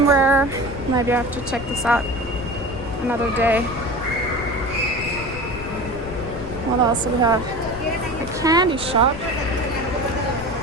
Maybe I have to check this out another day. What else do we have? A candy shop.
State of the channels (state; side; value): noise; left; rumble, 12 dB below the sound